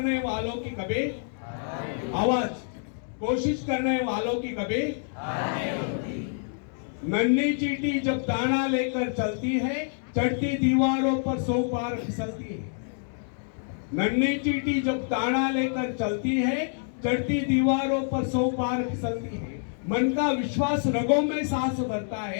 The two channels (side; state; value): right; silent; digital silence